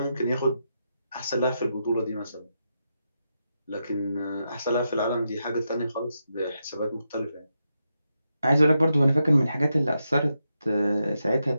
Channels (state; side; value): inverted; both; correlation -0.85